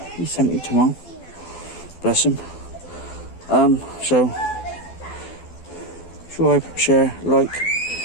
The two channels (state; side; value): late; right; 12 ms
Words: He's 70 tomorrow. Bless him. So subscribe, share, like,